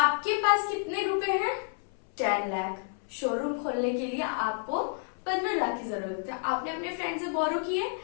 पास कितने रुपए हैं, 10 लाख। शोरूम खोलने के लिए आपको 15 लाख की जरूरत है, आपने अपने फ्रेंड से बोरो किए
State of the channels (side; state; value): right; silent; 58 dB below the other